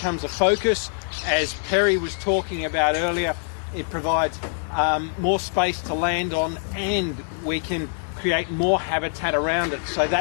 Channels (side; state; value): right; silent; 58 dB below the other